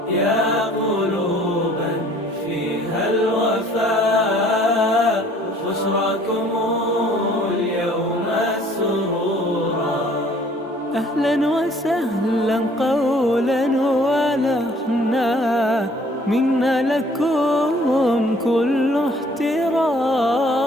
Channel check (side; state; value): both; normal; correlation 0.57